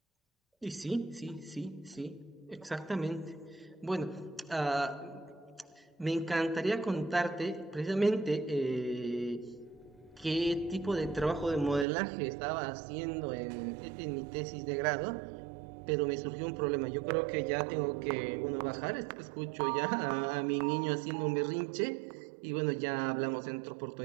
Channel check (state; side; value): drops out; left; at 11.9 s